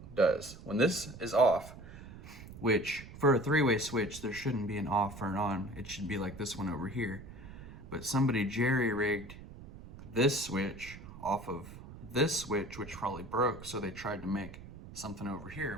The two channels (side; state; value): right; noise; rumble, 15 dB below the sound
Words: does. When this is off, which for a three-way switch, there shouldn't be an off or an on. It should be like this one over here. But somebody jerry-rigged this switch off of this switch, which probably broke, so they tried to make something over